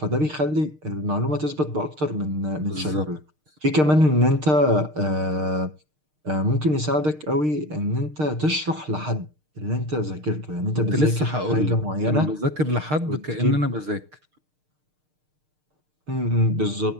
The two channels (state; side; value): late; left; 6.6 ms